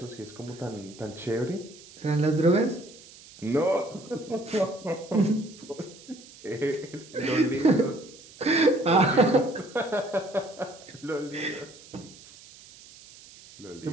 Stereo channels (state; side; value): noise; right; hiss, 21 dB below the sound